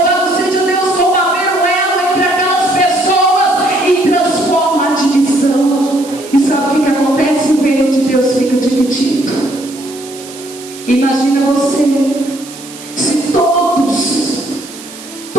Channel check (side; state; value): right; noise; hiss, 16 dB below the sound